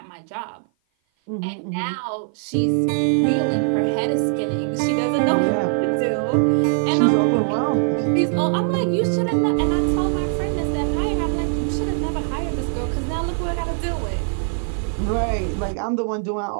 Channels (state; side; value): silent; left; 55 dB below the other